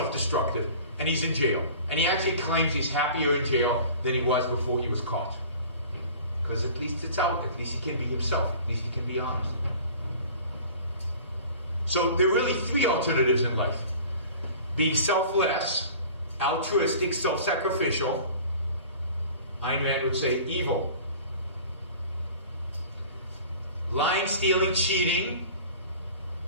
and he's in jail. And he actually claims he's happier in jail than he was before he was caught. Because at least it's out. At least he can be himself. At least he can be honest. So there are really three alternatives in life. Being selfless, altruistic, self-sacrificial. Ayn Rand would say evil. Lying, stealing, cheating,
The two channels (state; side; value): inverted; both; correlation -0.44